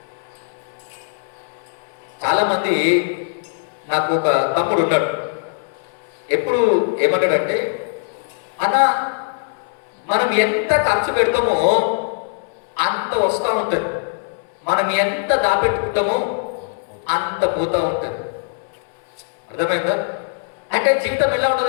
చాలా మంది, నాకు ఒక తమ్ముడు ఉన్నాడు, ఎప్పుడు ఏమంటాడంటే, అన్న మనం ఎంత ఖర్చు పెడతామో అంత వస్తూ ఉంటుంది, మనం ఎంత దాపెట్టుకుంటామో అంత పోతూ ఉంటుంది. అర్థమైందా? అంటే జీవితం ఎలా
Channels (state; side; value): silent; right; 62 dB below the other